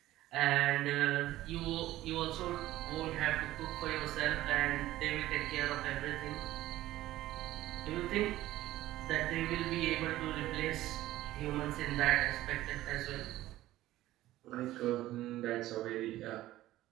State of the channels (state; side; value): quieter; left; 15.4 dB